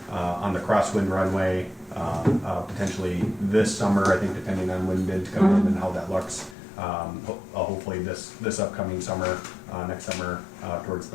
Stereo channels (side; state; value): right; drops out; at 6.6 s